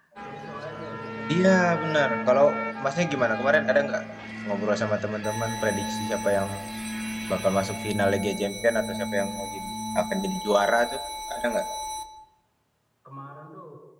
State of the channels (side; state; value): both; identical; correlation 1.00